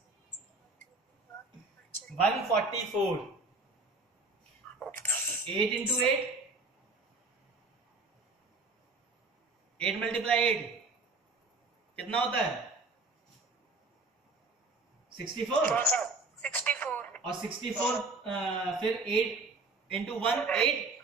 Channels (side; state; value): left; quieter; 3.4 dB